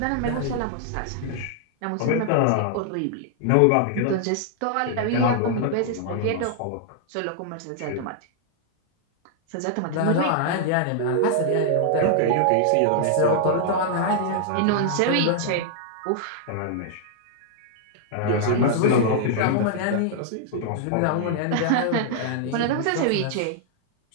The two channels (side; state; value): both; different; correlation -0.01